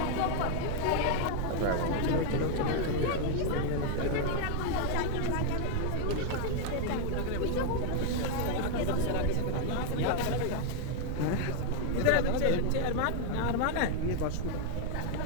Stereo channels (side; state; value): both; different; correlation 0.00